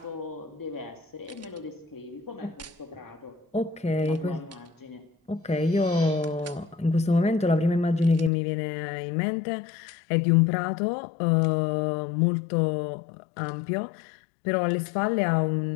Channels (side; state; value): right; drops out; at 8.3 s